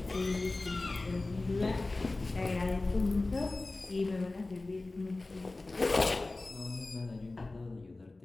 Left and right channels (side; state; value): right; quieter; 3.1 dB